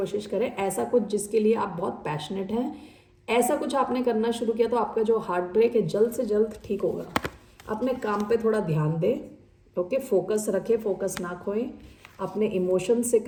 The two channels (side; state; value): both; identical; correlation 1.00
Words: करें, ऐसा कुछ जिसके लिए आप बहुत पैशनेट हैं। ऐसा कुछ आपने करना शुरू किया तो आपका जो हार्ट ब्रेक है जल्द से जल्द ठीक होगा। अपने काम पे थोड़ा ध्यान दें, ओके, फोकस रखें, फोकस ना खोएं, अपने इमोशन से